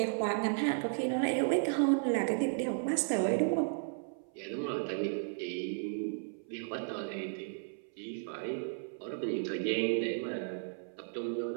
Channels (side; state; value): left; silent; 55 dB below the other